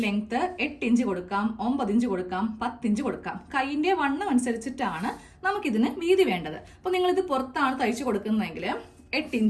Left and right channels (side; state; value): both; identical; correlation 1.00